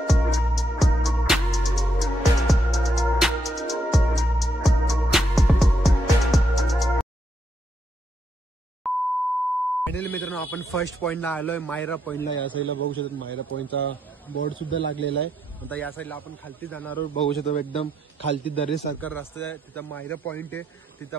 फायनली मित्रांनो आपण फर्स्ट पॉइंटला आलोय, मायरा पॉइंटला. या साईडला बघू शकतो मायरा पॉइंटचा बोर्ड सुद्धा लागलेला आहे. आता या साईडला आपण खालती जाणार आहोत. बघू शकतो एकदम खालती दरीसारखा रस्ता आहे, तिथं मायरा पॉइंट आहे. तिथं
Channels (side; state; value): both; normal; correlation 0.79